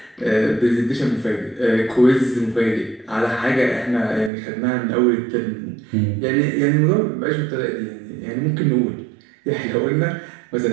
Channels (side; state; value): left; drops out; at 4.3 s